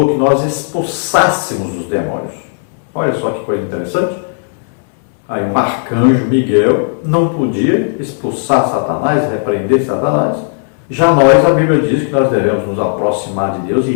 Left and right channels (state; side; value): silent; right; digital silence